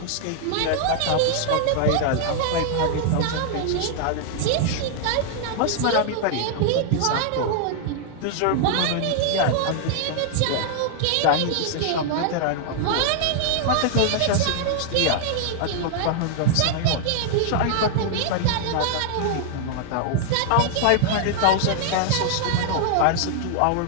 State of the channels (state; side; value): different; both; correlation -0.01